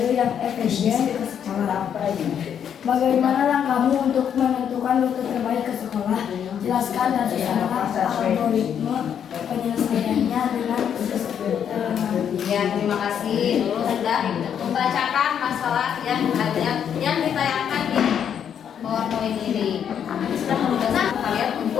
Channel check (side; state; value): right; quieter; 8.5 dB